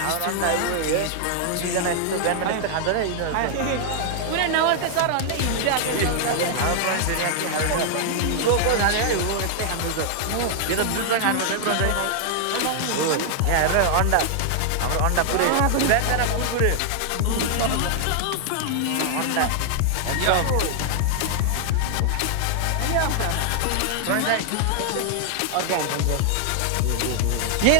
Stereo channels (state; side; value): different; both; correlation 0.00